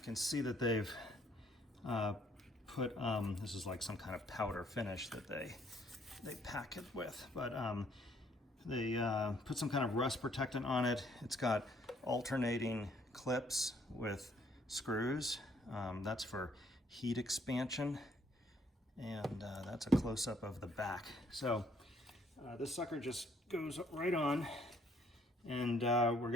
can see that they've put, this is like some kind of powder finish that they pack it with, but they put some kind of rust protectant on it. It's got alternating clips with screws. That's for heat expansion, and that's a close-up of the back. So this sucker just goes right on, and we're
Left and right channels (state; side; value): normal; both; correlation 0.65